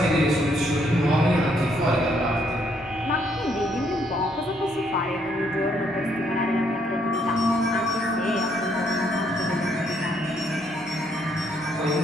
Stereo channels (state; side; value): normal; both; correlation 0.71